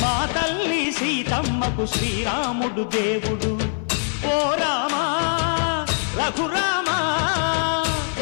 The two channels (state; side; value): silent; right; 55 dB below the other